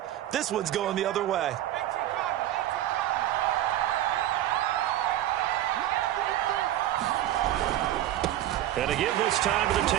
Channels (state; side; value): quieter; left; 13.2 dB